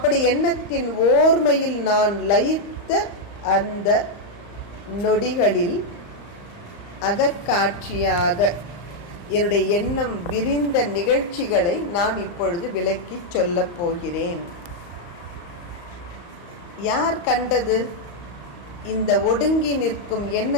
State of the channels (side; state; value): right; late; 34 ms